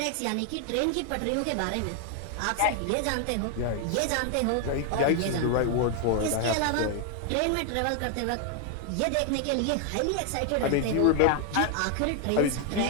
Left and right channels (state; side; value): different; both; correlation 0.00